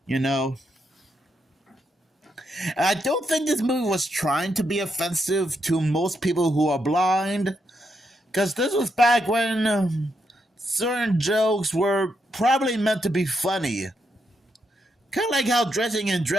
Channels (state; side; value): normal; both; correlation 0.80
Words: you know. And I don't think this movie was trying to be offensive to most people who are blind, because this was back when certain jokes were probably meant to be funny. Kind of like how dressing in